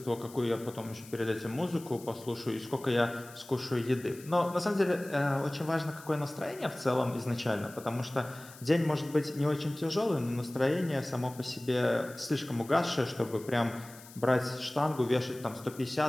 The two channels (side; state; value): left; noise; hiss, 19 dB below the sound